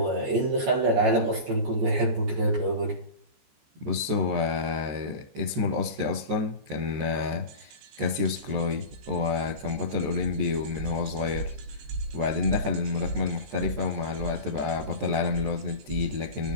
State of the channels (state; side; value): late; left; 14 ms